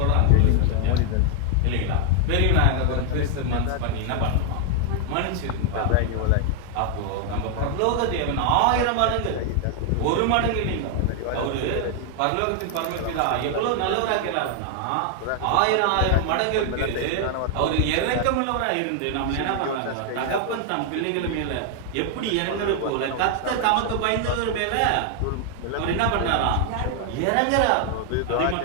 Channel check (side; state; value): both; different; correlation 0.00